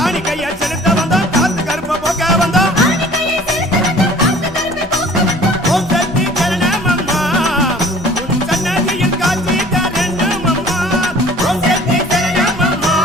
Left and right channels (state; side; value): normal; both; correlation 0.49